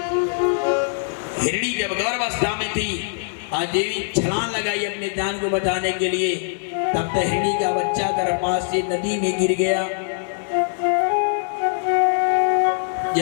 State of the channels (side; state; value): right; silent; digital silence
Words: हिरणी जब गर्भावस्था में थी, आज देवी छलांग लगाई अपने जान को बचाने के लिए, तब तक हिरणी का बच्चा गर्भपात से नदी में गिर गया।